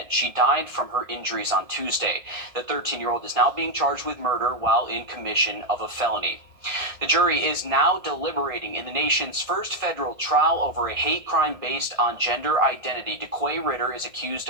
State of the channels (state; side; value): late; left; 1.6 ms